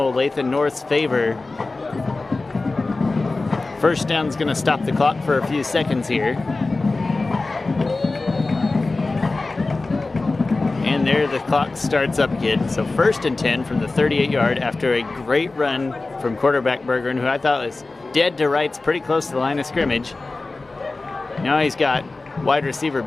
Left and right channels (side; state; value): right; quieter; 3.4 dB